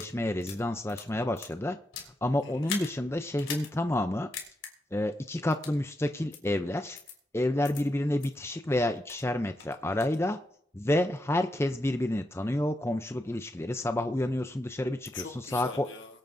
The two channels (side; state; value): both; normal; correlation 0.84